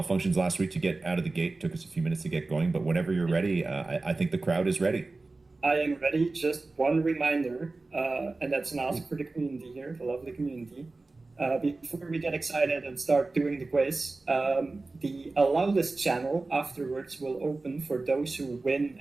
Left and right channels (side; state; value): left; quieter; 3.4 dB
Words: last week to get out of the gate. It took us a few minutes to get going, but whenever you're ready, I think the crowd is ready. I am ready. Just one reminder, and that's an ask for the community here, the lovely community. Before we get excited and start doing the quiz, the allow list channel afterwards will open for those who win